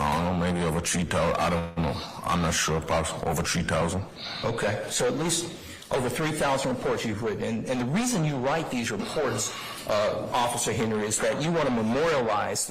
know, maybe over 3,000. I don't know. I'm not sure. About over 3,000. Okay, so at least over 3,000 reports you've written. And the reason you write these reports, Officer Henry, is that you want to memorialize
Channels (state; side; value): identical; both; correlation 1.00